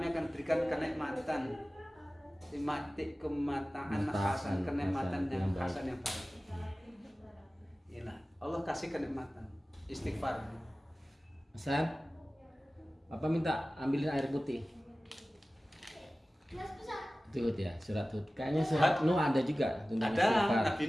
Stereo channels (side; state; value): both; normal; correlation 0.97